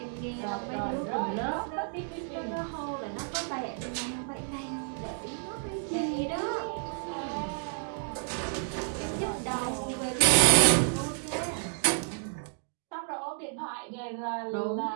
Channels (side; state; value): left; silent; 57 dB below the other